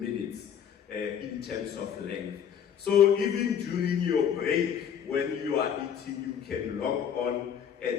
in terms of length. So even during your break, when you are eating, you can log on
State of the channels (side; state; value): right; quieter; 8.4 dB